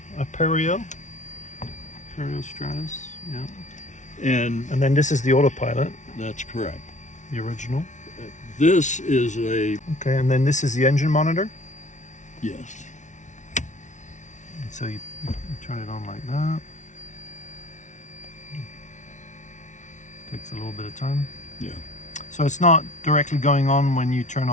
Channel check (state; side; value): late; right; 0.36 ms